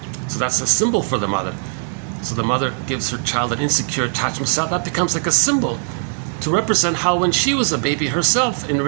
So that's a symbol for the mother. So the mother gives her child an insecure attachment style. That becomes like a symbol to represent how when she was a baby herself, in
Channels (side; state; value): left; silent; 58 dB below the other